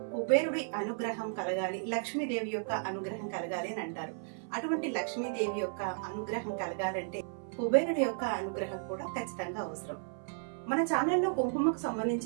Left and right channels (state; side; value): silent; left; 55 dB below the other